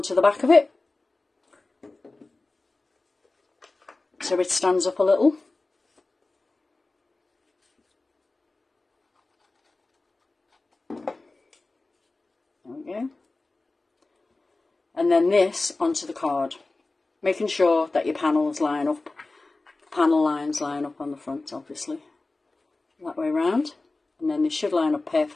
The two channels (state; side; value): quieter; right; 3.3 dB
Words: the back of it, so it stands up a little. There we go. And then this onto the card, making sure that your panels line up panel lines line up on the front, obviously. That way round. And then they should line up